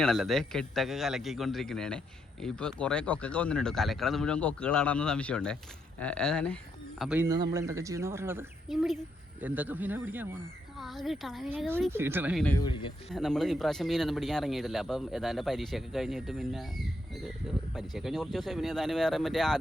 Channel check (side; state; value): both; normal; correlation 0.78